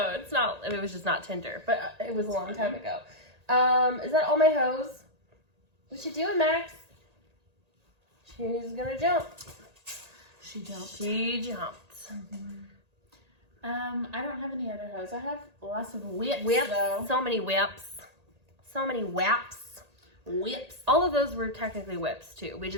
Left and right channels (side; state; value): left; late; 1.8 ms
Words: it was just not Tinder, but it was a long time ago. Is that all my hose? What you doing, Max? She's gonna jump. She jumped. She jumped. I don't have any other hose. I have lots of whips though. So many whips. So many whaps. Whips. All of those were technically whips too. We